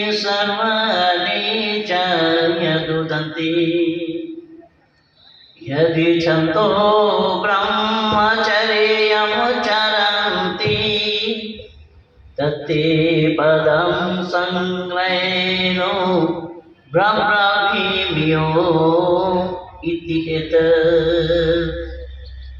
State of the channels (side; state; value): both; identical; correlation 1.00